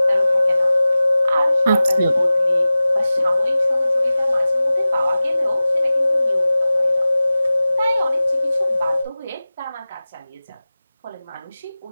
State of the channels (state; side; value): inverted; both; correlation -0.97